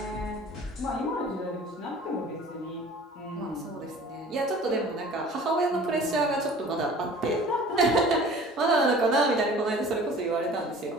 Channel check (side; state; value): both; normal; correlation 0.46